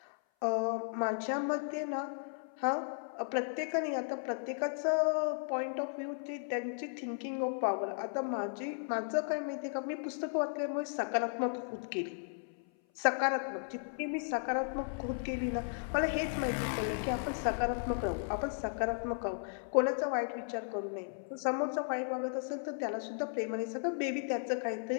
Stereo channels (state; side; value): silent; right; 54 dB below the other